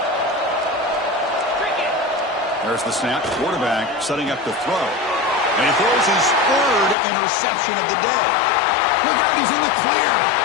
There's the snap. Quarterback setting up the throw. And he throws his 3rd interception of the day. Look out, he's in the clear.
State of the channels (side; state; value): right; drops out; at 7.0 s